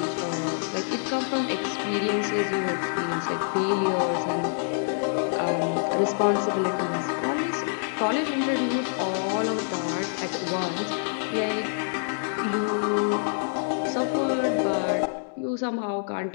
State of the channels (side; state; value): right; silent; digital silence